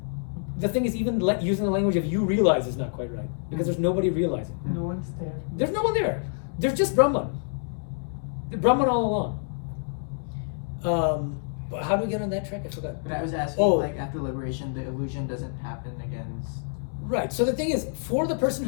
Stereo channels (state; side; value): silent; right; digital silence